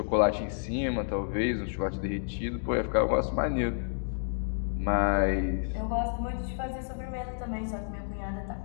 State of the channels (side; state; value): right; silent; digital silence